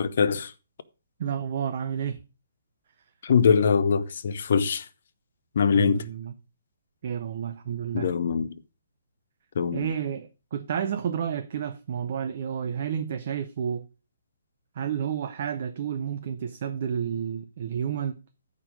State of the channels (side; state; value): both; inverted; correlation -0.68